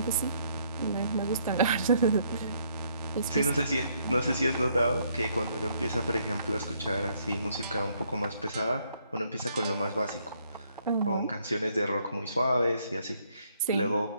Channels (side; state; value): both; inverted; correlation -0.69